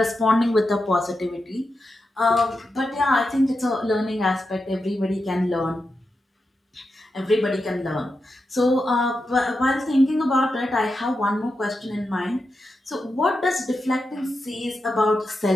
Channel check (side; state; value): both; normal; correlation 0.88